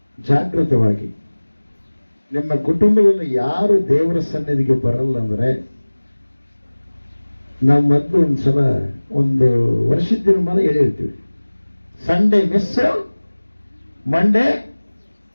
ಜಾಗೃತವಾಗಿ. ನಿಮ್ಮ ಕುಟುಂಬದಲ್ಲಿ ಯಾರು ದೇವರ ಸನ್ನಿಧಿಗೆ ಬರಲ್ಲ ಅಂದ್ರೆ, ನಾವು ಮೊದಲು ಒಂದ್ಸಲ ಒಂದು ವರ್ಷದ ದಿನಮಾನ ಹೇಳಿರ್ತೀವಿ, ಸಂಡೇ ಮಿಸ್, ಮಂಡೇ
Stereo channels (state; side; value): inverted; both; correlation -1.00